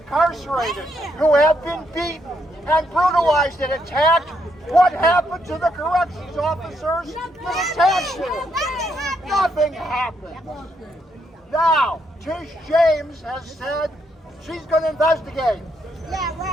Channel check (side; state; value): both; normal; correlation 0.76